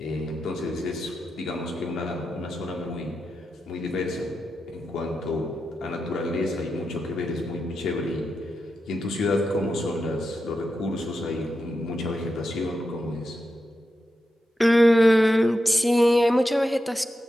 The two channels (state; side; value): normal; both; correlation 0.88